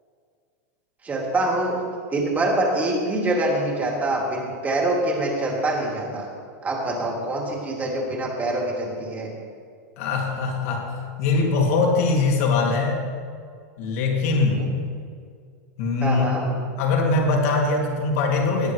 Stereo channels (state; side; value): normal; both; correlation 0.18